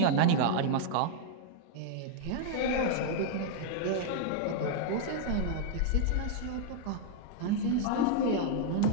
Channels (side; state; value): both; different; correlation -0.01